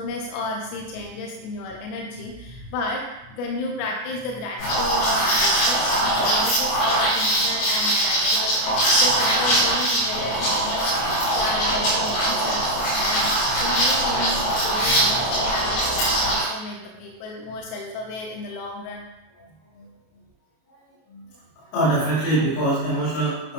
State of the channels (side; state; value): right; late; 32 ms